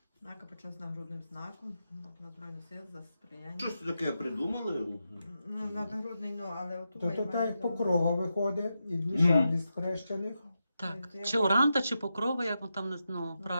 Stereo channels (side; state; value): both; inverted; correlation -0.88